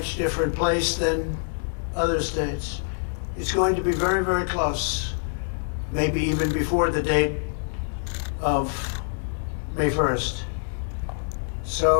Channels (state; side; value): silent; right; digital silence